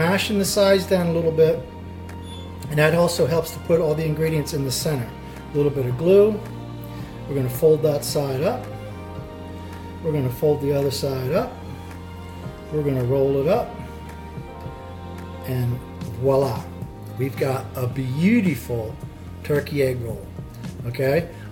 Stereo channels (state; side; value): identical; both; correlation 1.00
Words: the sides down a little bit, and that also helps to put all the ingredients in the center. A little bit of glue. We're going to fold that side up. We're going to fold the other side up. We're going to roll it up, and voila, we've got a beautiful turkey egg roll. Okay,